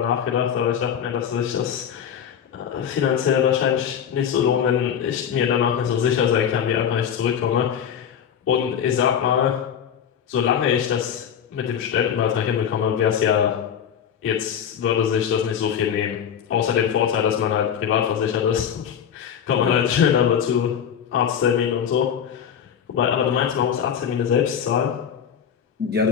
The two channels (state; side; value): quieter; right; 8.4 dB